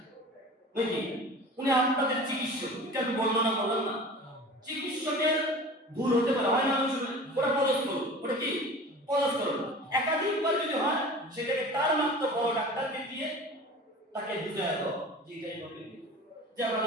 নাকি উনি আপনাদের চিকিৎসক, এটা আমি বর্ণনা করলাম না, চিকিৎসকের ভুল হতে পারে, হয় না? ওটা পদস্থল, ওটা কি পদস্থল। একাধিকবার যদি হয় সেটাকে তার মাত্র বড় ডাক্তারকে দিয়ে তাকে বুঝায় দাও যে এটাই প্রবলেম, যে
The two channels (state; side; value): normal; both; correlation 0.39